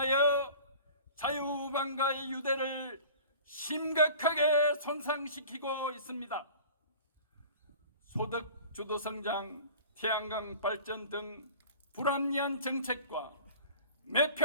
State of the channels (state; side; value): inverted; both; correlation -0.43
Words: 자유방가의 유대를 심각하게 손상시키고 있습니다. 소득 주도 성장, 태양광 발전 등 불합리한 정책과